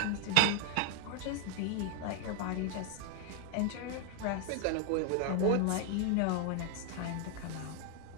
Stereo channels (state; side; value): different; both; correlation 0.00